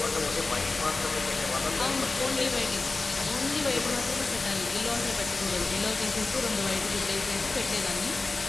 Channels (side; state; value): right; quieter; 3.5 dB